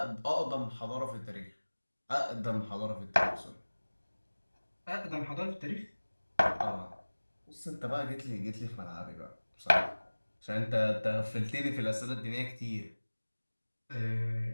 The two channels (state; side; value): inverted; both; correlation -1.00